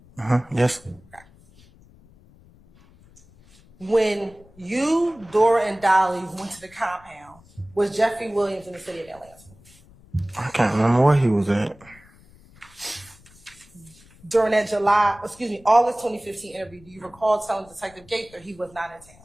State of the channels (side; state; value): left; noise; rumble, 26 dB below the sound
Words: Yes. Okay. When you, Dora, and Dolly went to the compound, was Jeffrey Williams in the city of Atlanta? I can't remember where he was at. During that August 2015 interview, do you recall telling Detective Gaither he was not in town?